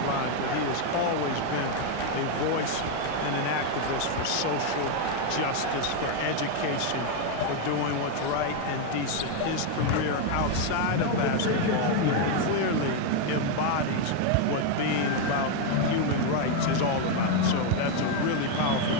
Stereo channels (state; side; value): different; both; correlation 0.01